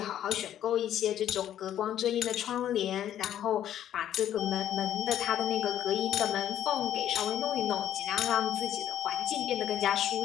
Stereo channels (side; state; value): right; quieter; 11.1 dB